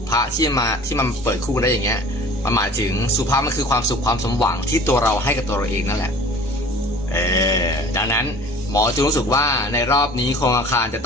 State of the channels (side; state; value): both; normal; correlation 0.46